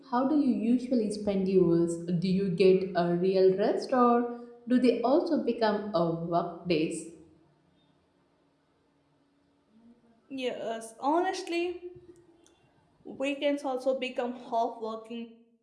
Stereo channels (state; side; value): identical; both; correlation 1.00